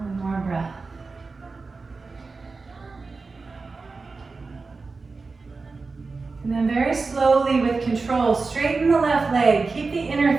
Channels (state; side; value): quieter; left; 4.1 dB